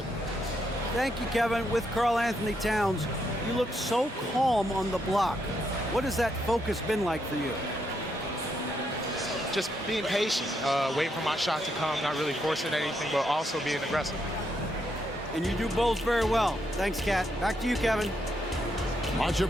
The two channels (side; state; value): both; normal; correlation 0.78